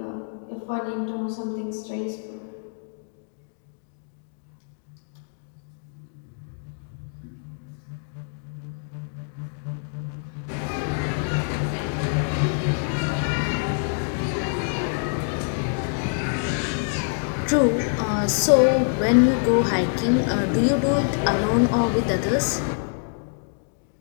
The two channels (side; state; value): right; silent; 60 dB below the other